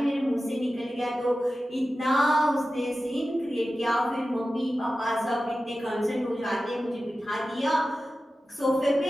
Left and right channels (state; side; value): normal; both; correlation 0.94